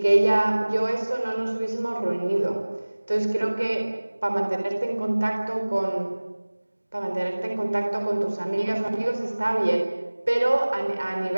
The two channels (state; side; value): inverted; both; correlation -1.00